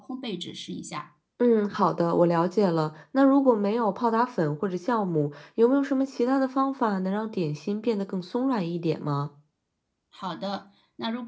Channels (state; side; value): identical; both; correlation 1.00